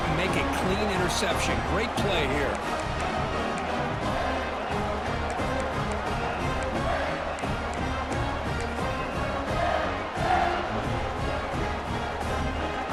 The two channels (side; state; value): both; identical; correlation 1.00